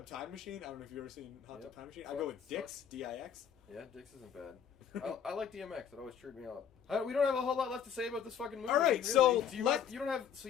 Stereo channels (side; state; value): right; quieter; 8.2 dB